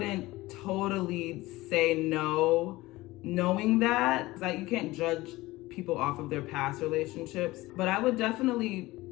totally say no, knowing that. Like, you can't judge people off of their past relationships, but I would definitely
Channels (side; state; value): right; quieter; 19.2 dB